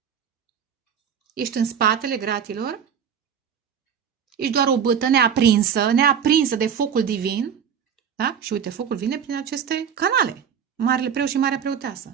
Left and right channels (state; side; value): quieter; left; 7.8 dB